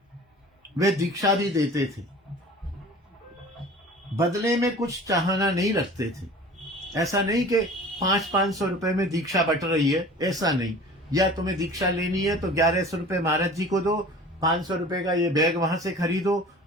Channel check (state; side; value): normal; both; correlation 0.43